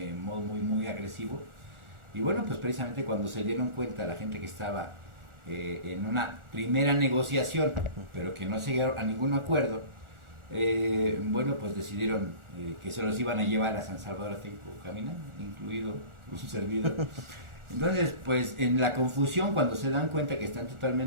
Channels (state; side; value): late; left; 1.4 ms